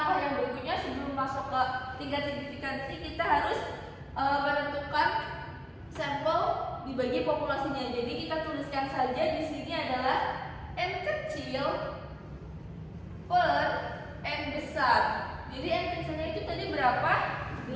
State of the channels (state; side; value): identical; both; correlation 1.00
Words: yang berikutnya sebelum masuk ke tingkat signifikansi, kita harus menentukan sampel dibagi populasinya. Jadi kita tuliskan saja di sini adalah N kecil per N besar. Jadi N kecilnya itu tadi berapa?